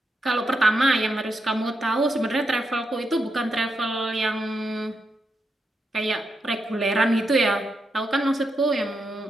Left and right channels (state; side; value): normal; both; correlation 0.84